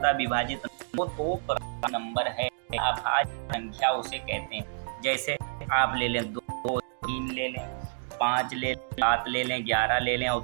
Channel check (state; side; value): silent; left; digital silence